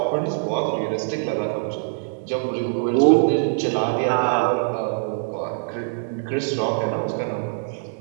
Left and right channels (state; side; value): silent; left; digital silence